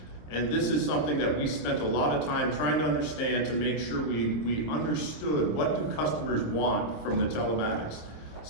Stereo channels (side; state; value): right; late; 26 ms